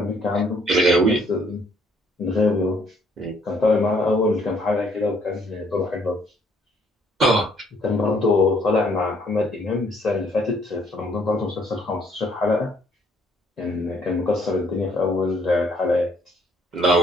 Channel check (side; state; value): both; normal; correlation 0.65